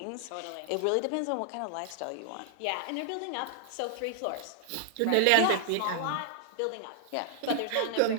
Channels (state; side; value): different; both; correlation -0.01